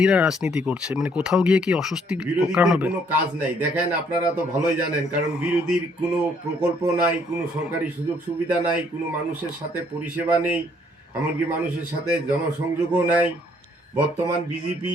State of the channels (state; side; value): normal; both; correlation 0.66